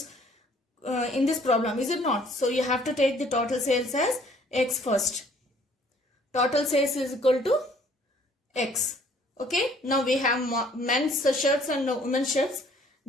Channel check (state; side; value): normal; both; correlation 0.59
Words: problem, is it not? So you have to take the total sales as X first. Total sales is equal to X. Okay. Now we have men's shirts and women's shirts.